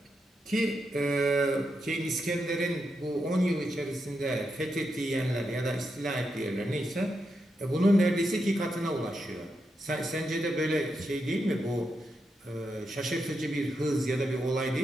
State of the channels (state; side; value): normal; both; correlation 0.85